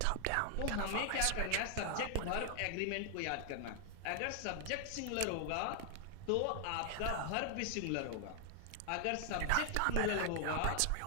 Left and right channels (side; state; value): both; different; correlation 0.00